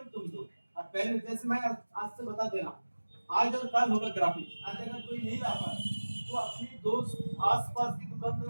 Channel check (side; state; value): both; inverted; correlation -1.00